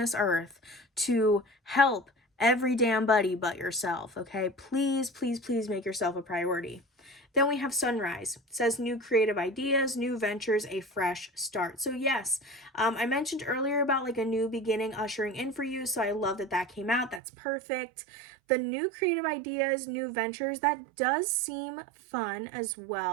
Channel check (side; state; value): left; drops out; at 17.2 s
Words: earth to help every damn buddy but yourself, okay? Please, please, please make yourself a priority. Then we have sunrise. It says new creative ideas, new ventures, a fresh start. So yes, I mentioned earlier about like a new beginning ushering in for you. So I love that that came out. That's perfect. The new creative ideas, new ventures, that does seem fun as